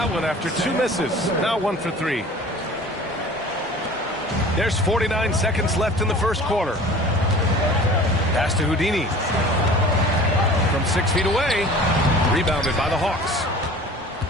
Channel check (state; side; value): normal; both; correlation 0.43